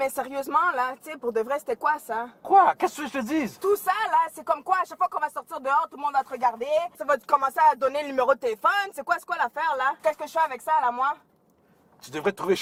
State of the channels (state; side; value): identical; both; correlation 1.00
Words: sérieusement, là, tu sais, pour de vrai, c'était quoi ça? Quoi? Qu'est-ce que je te dise? Tout ça, là, c'est comme quoi, à chaque fois qu'on va sortir dehors, tout le monde va te regarder, ça va te commencer à donner le numéro de téléphone, c'est quoi l'affaire, là? Qu'est-ce que je fais avec ça, là, moi? Tu devrais te trouver